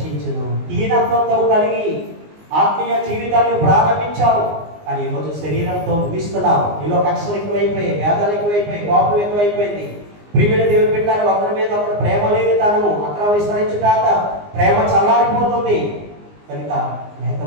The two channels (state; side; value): late; left; 19 ms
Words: దీనత్వంతో కలిగి ఆత్మీయ జీవితాన్ని ప్రారంభించావు, కానీ ఈరోజు శరీరంతో ముగిస్తున్నావు. నీలో కక్షలు ఎక్కువైపోయాయి, వేదాలు ఎక్కువైపోయాయి, కోపం ఎక్కువైపోయింది. ప్రియమైన దేవుని బిడ్డలారా, ఒకరి మీద ఒకరు ప్రేమ లేని తనము అక్రమ విస్తరించుట ప్రేమ చల్లారిపోతుంది. కనుక